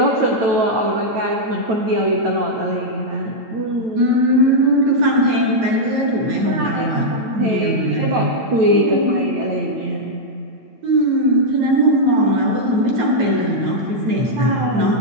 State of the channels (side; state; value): left; late; 9.2 ms